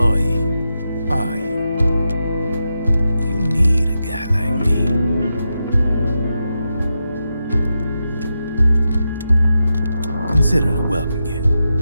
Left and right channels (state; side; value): inverted; both; correlation -0.88